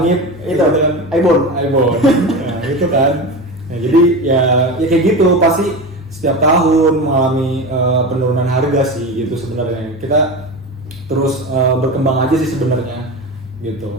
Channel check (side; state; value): both; normal; correlation 0.25